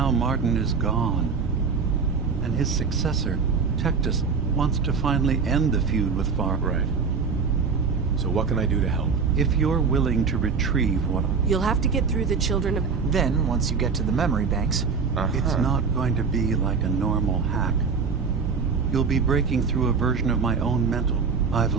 Martin is gone, and his successor, Tectus, wants to finally end the feud with Far... Right. So what can I do to help? If you're willing to retrieve what... You'll have to get through the children of... Then, once you get to the memory banks... It's not going to be like a normal hack. You'll be breaking through a version of my own mental... I've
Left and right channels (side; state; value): left; quieter; 5.4 dB